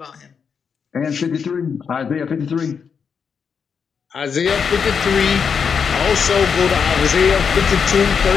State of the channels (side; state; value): right; quieter; 6.4 dB